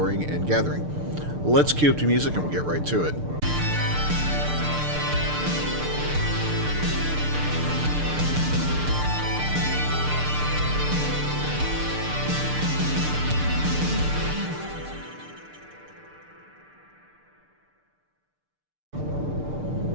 and gathering. Let's cue up the music and we'll get right to it.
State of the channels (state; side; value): late; left; 6.7 ms